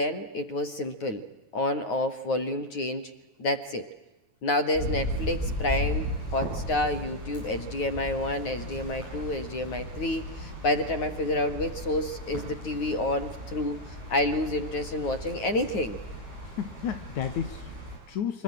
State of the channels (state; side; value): late; right; 9.4 ms